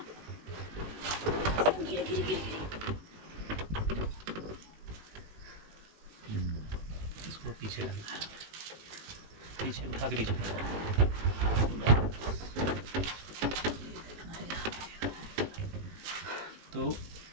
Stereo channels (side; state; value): left; late; 19 ms